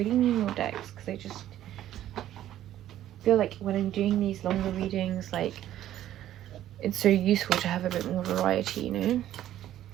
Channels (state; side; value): quieter; left; 12.5 dB